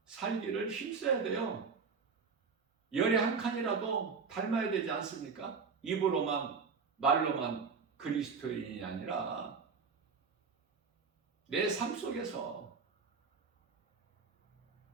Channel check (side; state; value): left; quieter; 5.3 dB